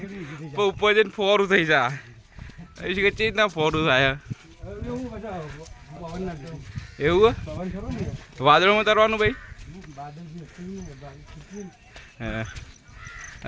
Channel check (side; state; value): both; identical; correlation 1.00